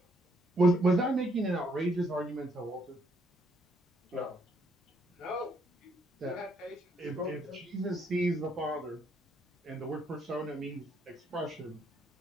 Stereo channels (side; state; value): both; normal; correlation 0.71